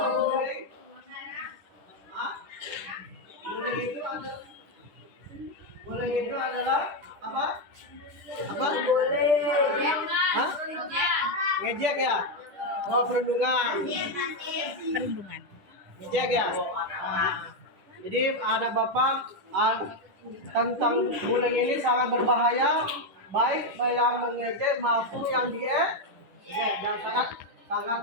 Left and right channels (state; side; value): late; left; 10 ms